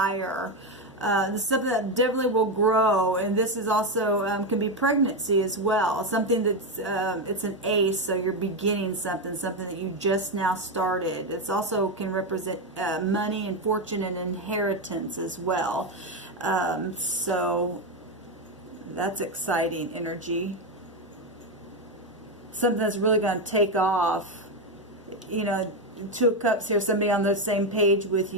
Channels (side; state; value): both; normal; correlation 0.09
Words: This is something that definitely will grow, and this is also can be pregnancy as well. Something that's it's an ace, so you're beginning something that you just now started. It's also can represent money and fortune and inheritance as well. So that's exciting energy. Something that's really going to take off. You know, Two of Cups here, somebody on the same page with